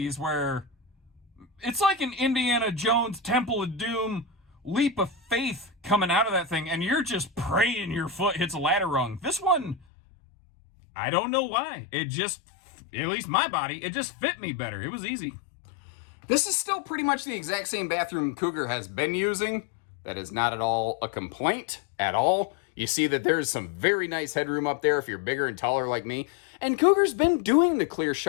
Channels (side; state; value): right; drops out; at 9.8 s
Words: where it's like an Indiana Jones Temple of Doom leap of faith coming out of that thing, and you're just praying your foot hits a ladder rung. This one, I don't know why. It just, at least my body, it just fit me better. It was easy. This is still pretty much the exact same bathroom Cougar has been using. That is not at all a complaint at all. You see that there's some very nice headroom up there if you're bigger and taller like me. And Cougar's been doing the clear